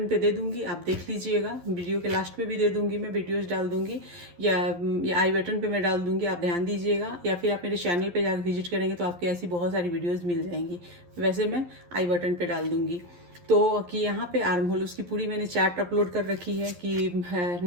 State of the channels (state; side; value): late; left; 11 ms